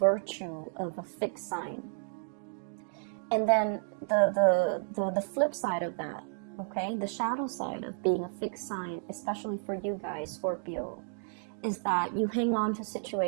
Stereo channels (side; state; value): left; silent; digital silence